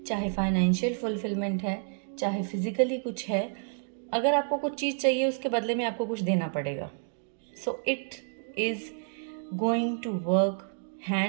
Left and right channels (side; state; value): left; silent; 58 dB below the other